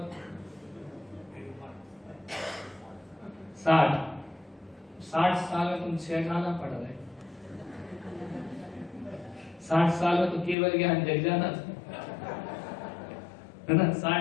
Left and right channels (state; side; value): drops out; right; at 10.6 s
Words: 60 साल में तुम 6 खाना पढ़ रहे। 60 साल में तो केवल ज्ञान जग जाना था, है ना?